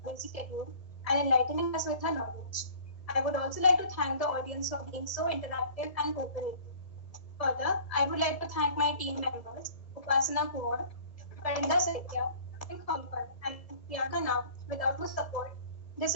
busy schedule and enlightening us with her knowledge. I would also like to thank the audience for being so interactive and cooperative. Further, I would like to thank my team members, Upasana Kumar, Karinda Saitya, and Kongkar, and Priyanka Nam, without whose support, this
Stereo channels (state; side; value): late; right; 1.8 ms